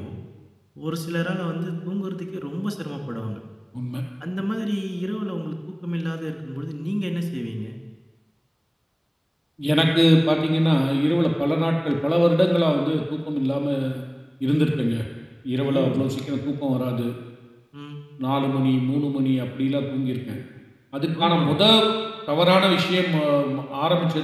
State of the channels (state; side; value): identical; both; correlation 1.00